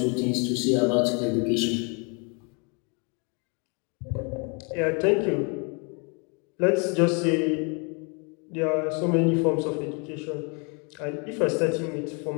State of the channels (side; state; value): right; quieter; 34.6 dB